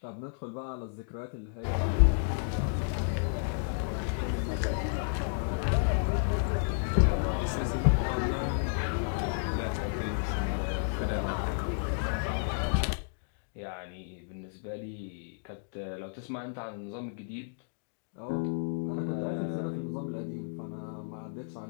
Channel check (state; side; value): silent; right; digital silence